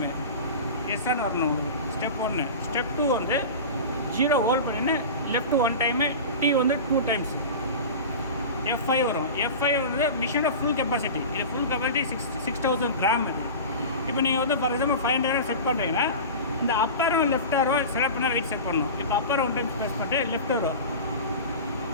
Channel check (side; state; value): both; inverted; correlation -0.31